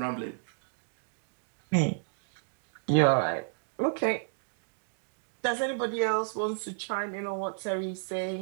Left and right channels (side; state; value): left; silent; digital silence